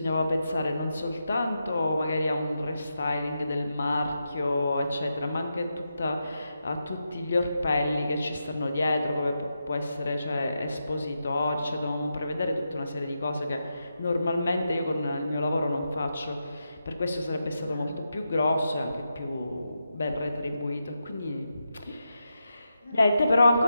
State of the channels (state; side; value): inverted; both; correlation -0.87